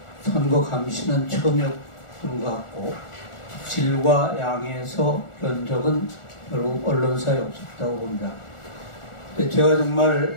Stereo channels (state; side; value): late; right; 1.4 ms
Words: 선거 감시는 처음이었던 것 같고, 질과 양에서 그런 적은 결국 언론사에 없었다고 봅니다. 근데 제가 정말